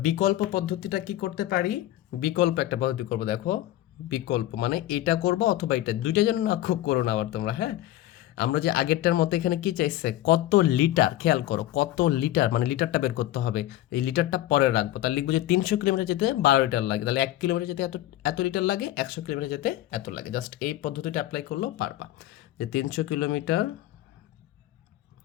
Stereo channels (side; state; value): right; quieter; 14.4 dB